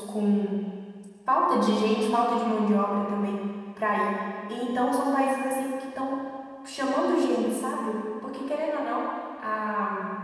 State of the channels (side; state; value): both; identical; correlation 1.00